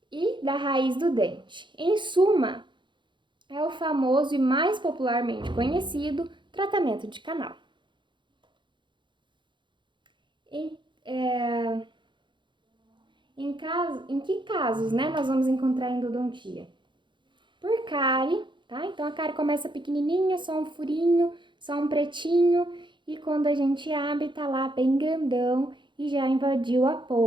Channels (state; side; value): late; left; 0.23 ms